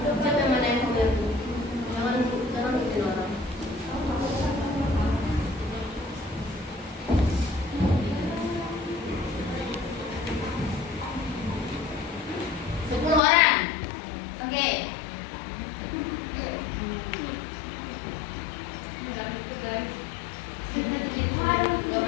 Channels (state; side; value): drops out; right; at 13.2 s